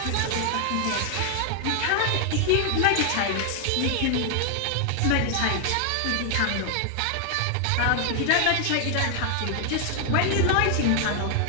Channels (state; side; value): different; both; correlation 0.00